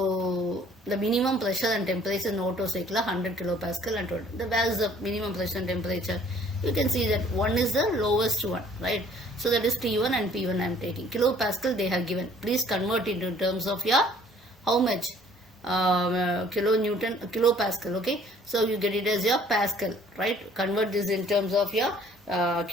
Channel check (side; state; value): both; normal; correlation 0.57